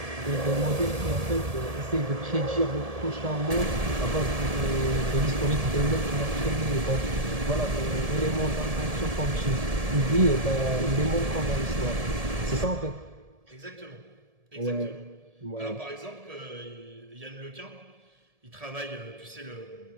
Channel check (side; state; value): left; late; 1.7 ms